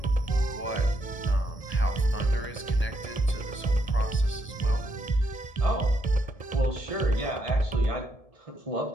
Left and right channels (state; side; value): late; right; 1.7 ms